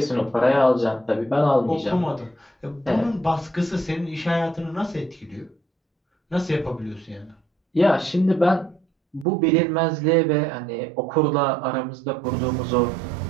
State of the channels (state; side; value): drops out; left; at 9.2 s